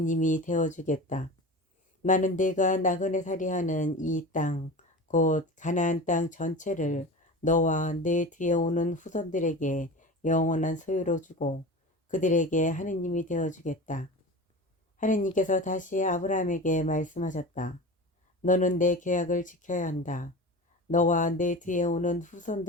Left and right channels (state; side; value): normal; both; correlation 0.32